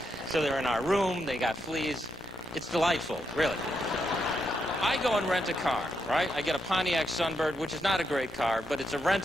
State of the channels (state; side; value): normal; both; correlation 0.80